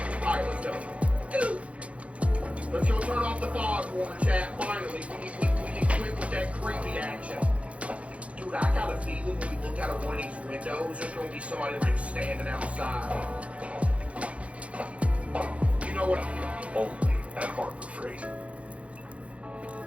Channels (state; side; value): late; left; 0.063 ms